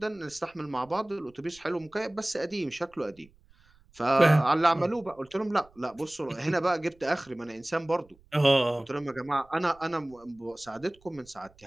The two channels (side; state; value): right; noise; rumble, 29 dB below the sound